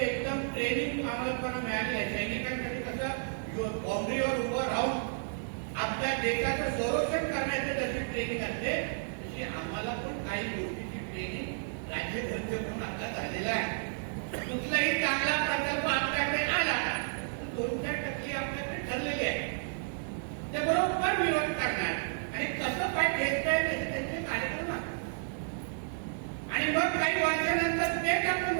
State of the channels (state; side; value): silent; left; digital silence